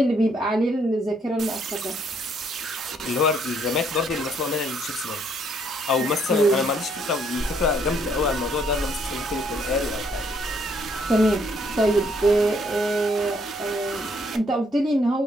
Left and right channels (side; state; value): both; normal; correlation 0.68